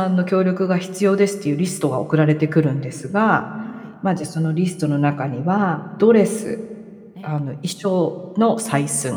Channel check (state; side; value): identical; both; correlation 1.00